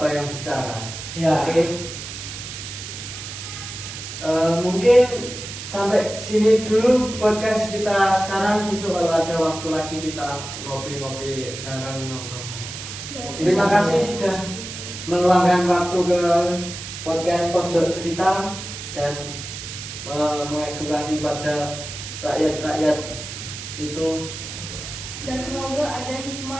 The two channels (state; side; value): noise; right; hiss, 9 dB below the sound